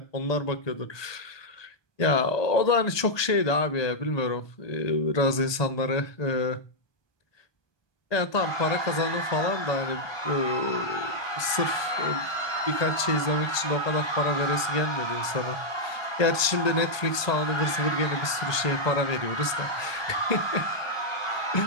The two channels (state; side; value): late; right; 1.2 ms